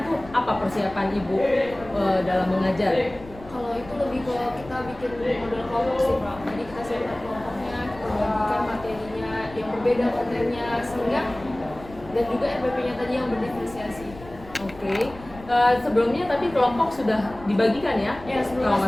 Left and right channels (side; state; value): left; noise; rumble, 18 dB below the sound